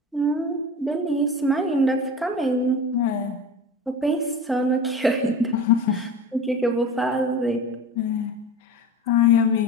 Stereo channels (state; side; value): normal; both; correlation 0.33